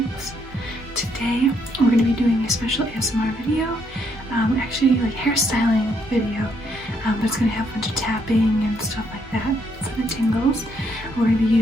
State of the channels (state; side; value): normal; both; correlation 0.73